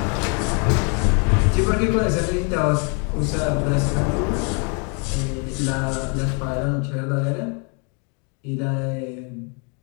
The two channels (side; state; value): right; quieter; 36.4 dB